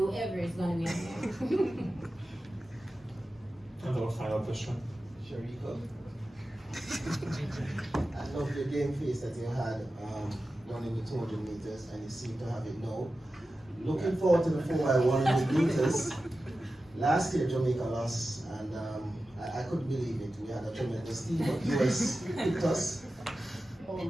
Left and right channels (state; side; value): normal; both; correlation 0.93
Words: is gonna be on there. And our final question. Shericka. I love the game face that you had running the 200 meters, and you seem to have it now. Looking forward to the 4x100 meters. Last year, Jamaica lost, and I couldn't believe it. We had a tremendous team, but US picked us. How